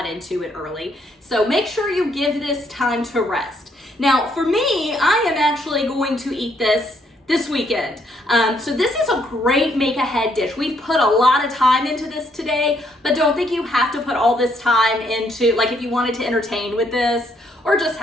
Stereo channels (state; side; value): normal; both; correlation 0.71